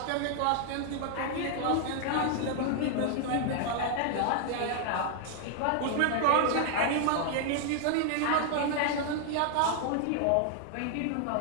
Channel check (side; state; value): both; different; correlation 0.00